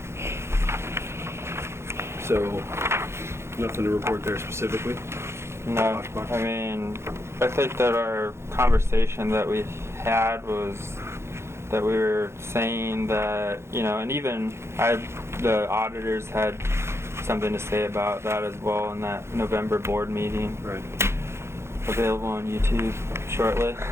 So nothing to report there specifically? no, I mean, I think that our conversation that we had was that we were saying that, and even the auditors had something to say about that as well in that November board meeting, Right. available on YouTube shortly.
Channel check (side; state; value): left; late; 0.13 ms